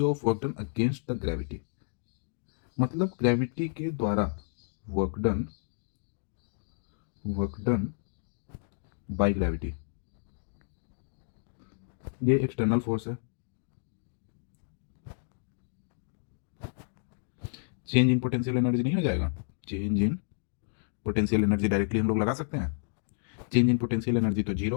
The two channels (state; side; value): silent; right; digital silence